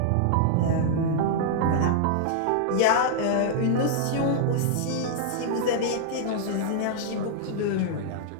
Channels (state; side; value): different; both; correlation -0.01